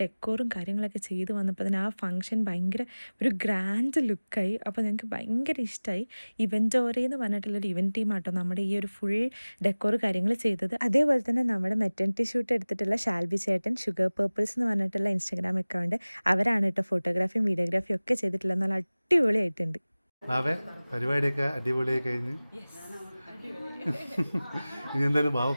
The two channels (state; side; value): inverted; both; correlation -0.99